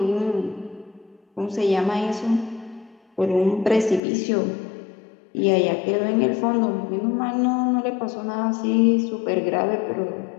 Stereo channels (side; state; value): right; drops out; at 4.0 s